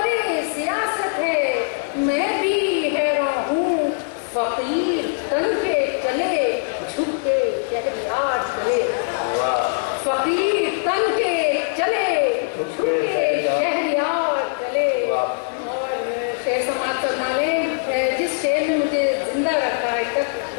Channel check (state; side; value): silent; right; 64 dB below the other